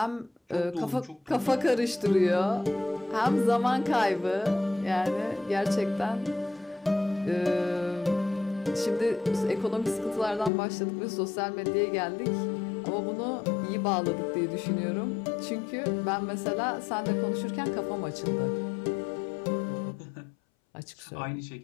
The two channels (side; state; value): right; drops out; at 10.5 s